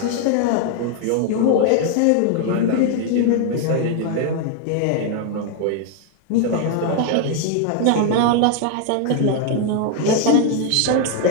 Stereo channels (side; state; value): both; different; correlation 0.00